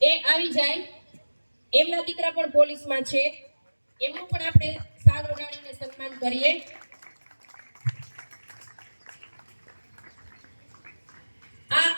એ આવી જાય. એમના દીકરા પણ પોલીસમાં છે, એમનું પણ આપણે સાલ ઓઢાડીને સન્માન કરીએ. આ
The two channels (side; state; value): both; inverted; correlation -1.00